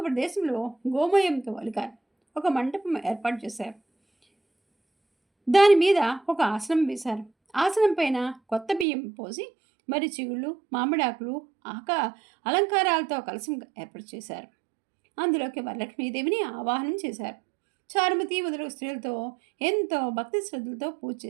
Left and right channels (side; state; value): left; drops out; at 8.8 s